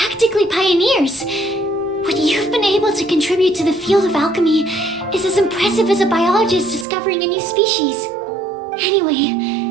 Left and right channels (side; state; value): left; drops out; at 6.9 s